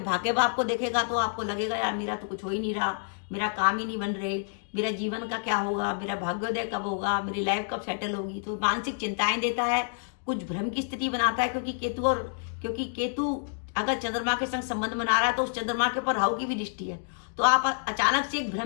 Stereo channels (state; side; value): silent; right; digital silence